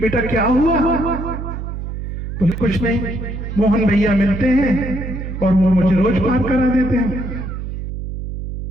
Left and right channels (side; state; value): right; noise; hum, 6 dB below the sound